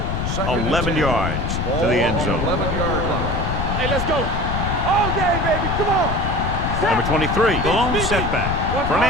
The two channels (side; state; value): left; noise; rumble, 2 dB below the sound